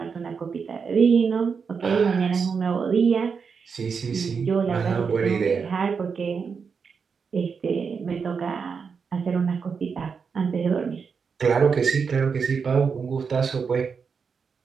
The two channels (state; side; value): quieter; left; 5.8 dB